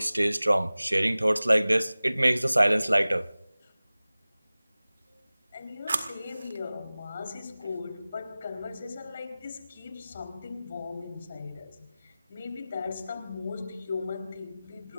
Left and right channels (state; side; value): inverted; both; correlation -0.98